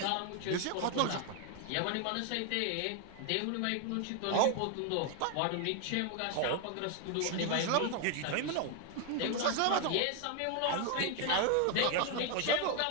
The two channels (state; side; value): different; both; correlation 0.01